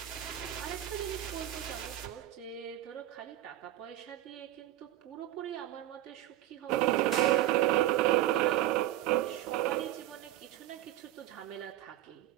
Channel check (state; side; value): quieter; left; 14.0 dB